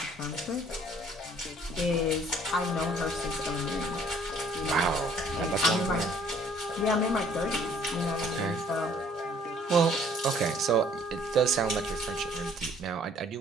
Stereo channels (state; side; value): normal; both; correlation 0.59